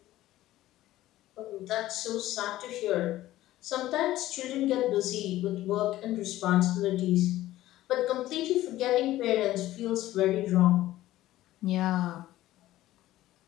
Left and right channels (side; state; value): right; quieter; 15.2 dB